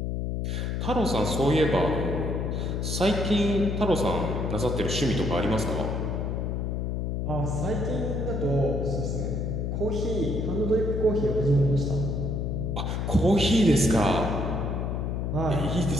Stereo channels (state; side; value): noise; left; hum, 1 dB below the sound